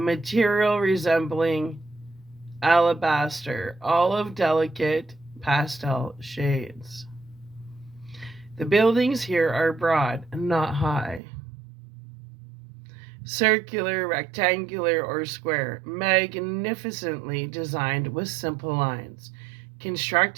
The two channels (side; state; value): left; drops out; at 11.2 s